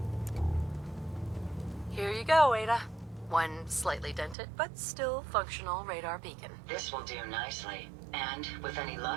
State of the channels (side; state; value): left; drops out; at 4.4 s